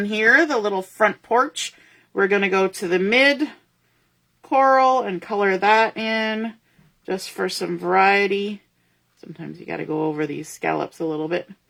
here, the little front porch, we're going to go to the mid coral and color that in just for some variety. Sometimes you got to go over these scallops a little bit.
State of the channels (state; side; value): identical; both; correlation 1.00